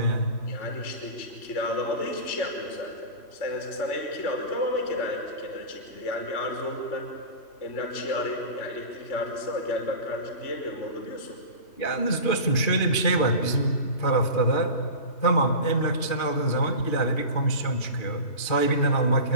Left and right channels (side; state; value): right; late; 2.5 ms